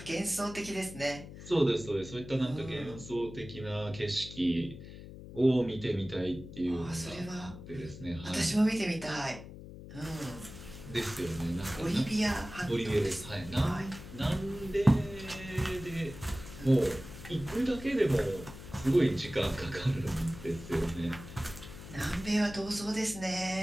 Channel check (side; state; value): left; noise; hum, 14 dB below the sound